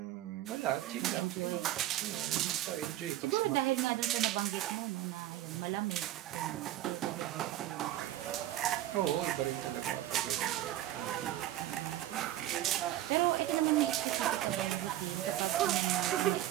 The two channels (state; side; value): quieter; left; 13.7 dB